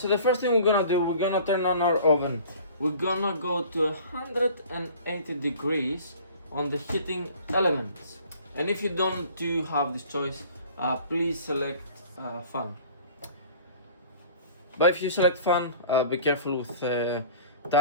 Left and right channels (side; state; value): both; inverted; correlation -0.47